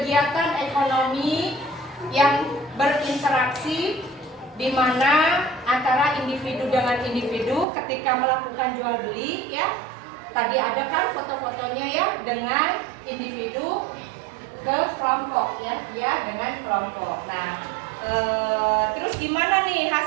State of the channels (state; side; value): drops out; left; at 7.7 s